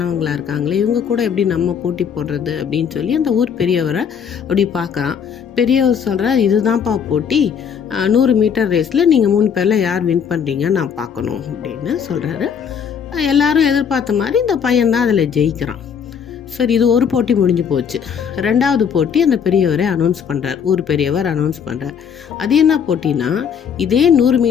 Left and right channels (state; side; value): quieter; right; 7.4 dB